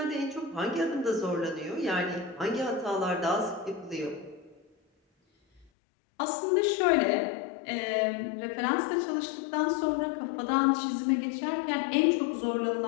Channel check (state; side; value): drops out; right; at 5.7 s